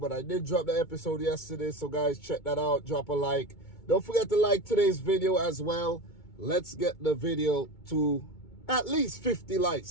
I did drop the episode yesterday. So, guys, check that out. Drop a like. Don't forget to like today's video as well. Let's get the video to at least 50 likes,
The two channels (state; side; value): late; right; 2.2 ms